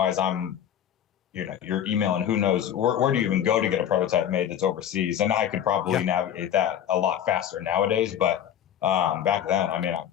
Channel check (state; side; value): quieter; right; 10.0 dB